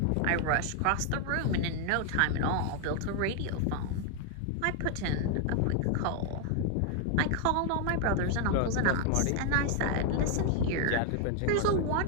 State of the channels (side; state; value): both; different; correlation 0.00